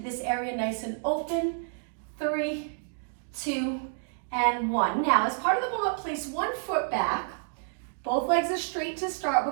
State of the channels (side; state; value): left; silent; digital silence